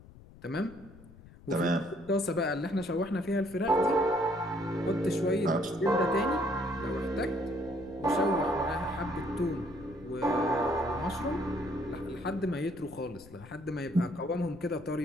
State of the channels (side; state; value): left; noise; rumble, 20 dB below the sound